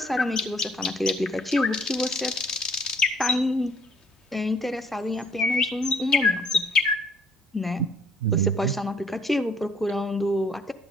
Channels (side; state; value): both; normal; correlation 0.61